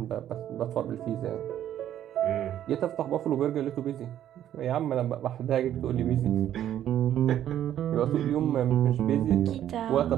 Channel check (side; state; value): left; quieter; 11.2 dB